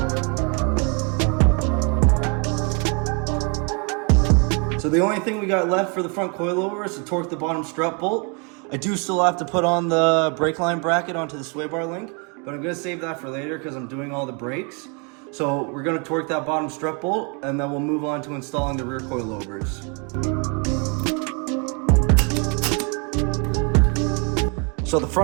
So the only thing we got left for the front coilover is to torque the bottom strut bolt. I do still have to put on the brake line bracket onto the sway bar link, but I'm gonna save that for later because I'm doing all the brakes. So we're gonna torque that bottom strut bolt, and then we'll move on to installing the rear coilovers. So the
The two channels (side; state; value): left; quieter; 34.6 dB